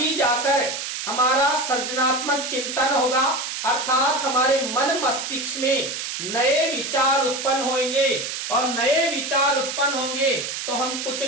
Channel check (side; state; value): right; noise; hiss, 5 dB below the sound